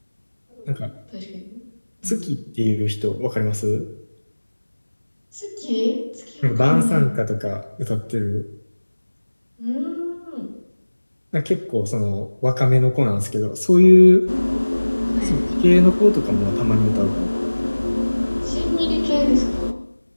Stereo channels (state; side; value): inverted; both; correlation -1.00